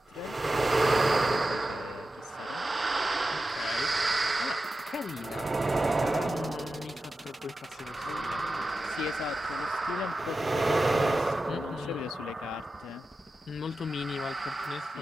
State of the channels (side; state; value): both; normal; correlation 0.92